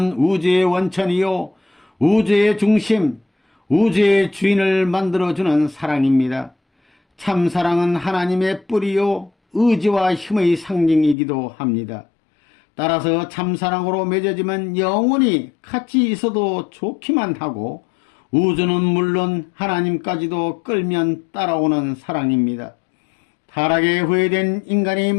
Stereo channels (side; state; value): right; drops out; at 11.2 s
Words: 우주의 원천이요 우주의 중심, 우주의 주인을 만들어주는 사랑입니다. 참사랑은 하나님의 뿌리요 의지와 힘의 상징이기도 합니다. 따라서 참사랑으로 맺어지면 영원히 같이 있어도 좋기만 하고 우주는 물론 하나님까지도 끌면 따라오는 사랑입니다. 타락에 후회된 인간이